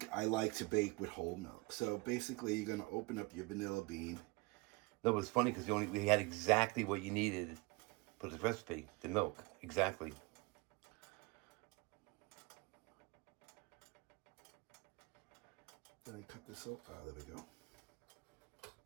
I like to bake with whole milk. So basically, you're going to open up your vanilla bean. No, it was funny because we had exactly what you needed for the recipe, the milk. Exactly. Did I cut this off? Ah, there we go.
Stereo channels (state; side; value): quieter; left; 25.8 dB